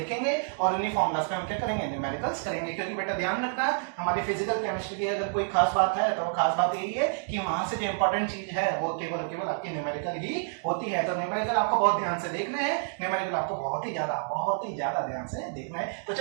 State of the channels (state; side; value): silent; left; digital silence